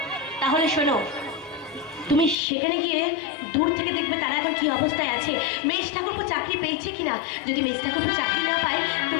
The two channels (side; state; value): right; drops out; at 2.4 s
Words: তাহলে শোনো, তুমি সেখানে গিয়ে দূর থেকে দেখবে তারা এখন কি অবস্থায় আছে, মেজ ঠাকুরপো চাকরি পেয়েছে কিনা। যদি মেজ ঠাকুরপো চাকরি না পায়,